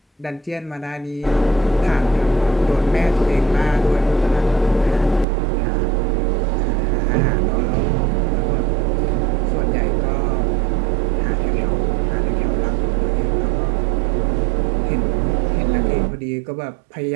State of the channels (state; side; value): drops out; left; at 5.2 s